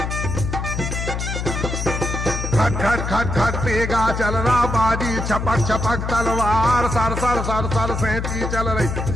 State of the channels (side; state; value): left; noise; hum, 3 dB below the sound